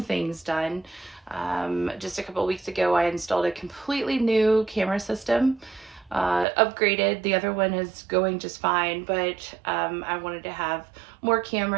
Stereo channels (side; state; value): left; drops out; at 6.5 s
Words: things done. Just a couple of weeks ago, I installed a completely new camera system, upgraded. The other one is going just fine, but I wanted to have more